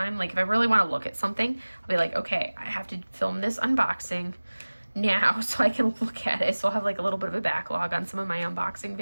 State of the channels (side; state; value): both; inverted; correlation -1.00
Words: Like if I really want to look at something, I'll be like, okay, I have to film this unboxing now so I can look at it. So I'll have like a little bit of a backlog on some of my unboxing